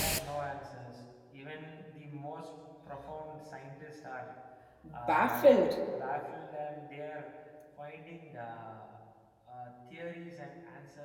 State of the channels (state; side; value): identical; both; correlation 1.00